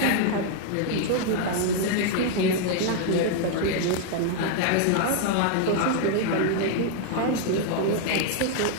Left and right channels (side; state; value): both; different; correlation 0.00